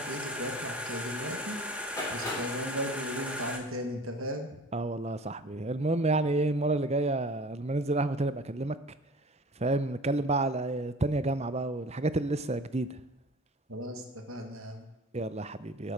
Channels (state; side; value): normal; both; correlation 0.43